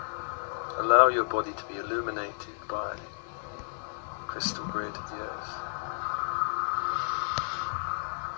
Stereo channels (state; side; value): silent; right; 57 dB below the other